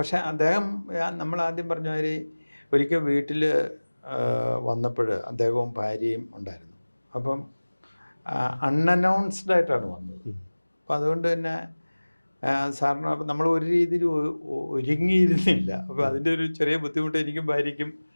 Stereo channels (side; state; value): both; inverted; correlation -1.00